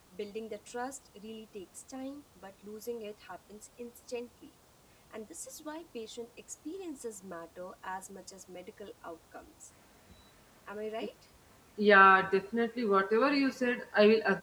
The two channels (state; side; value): identical; both; correlation 1.00